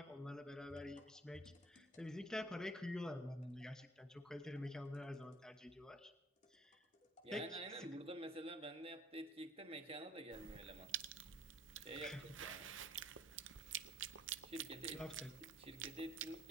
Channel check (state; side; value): normal; both; correlation 0.57